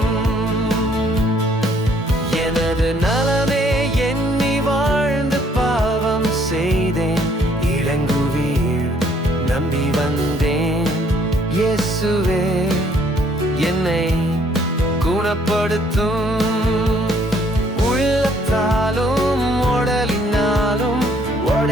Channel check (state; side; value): normal; both; correlation 0.64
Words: எனது நலமே எண்ணி வாழ்ந்து பாவம் செய்தேன் இளங்குவீர். நம்பி வந்தேன் இயேசுவே என்னை குணப்படுத்தும். உள்ளத்தாலும் உடலினாலும்